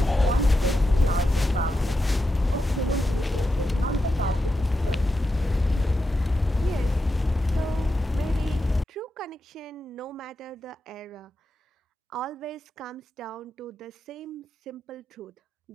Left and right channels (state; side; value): normal; both; correlation 0.88